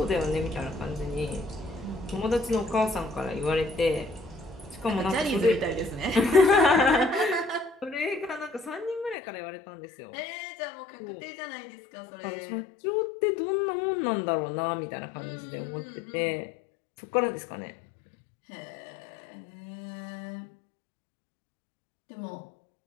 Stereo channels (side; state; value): right; drops out; at 9.2 s